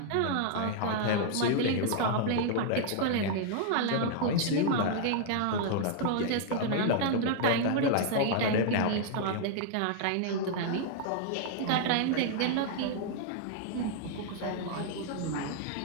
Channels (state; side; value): different; both; correlation 0.00